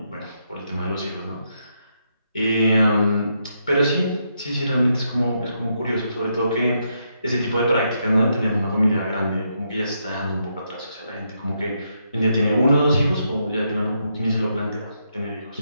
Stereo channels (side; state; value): both; inverted; correlation -0.79